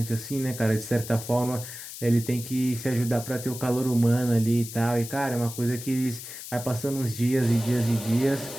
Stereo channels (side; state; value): left; noise; hiss, 11 dB below the sound